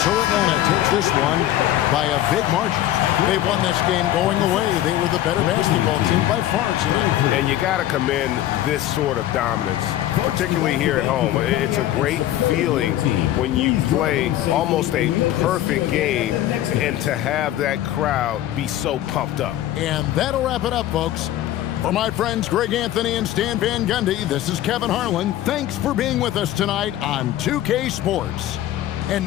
Atlanta takes this one by a big margin. They won this game going away. They were the better basketball team by far tonight. And you got to commend this sort of dominance, particularly here at home. It's a great feeling when you play almost a perfect game and to have that crowd be so pumped up. And that'll wrap it up, folks. For my friends Greg Anthony and Stan Van Gundy, this is Kevin Harlan. Thanks for being with us tonight on 2K Sports. And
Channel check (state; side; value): quieter; right; 13.2 dB